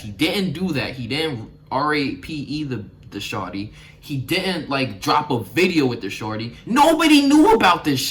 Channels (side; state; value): both; identical; correlation 1.00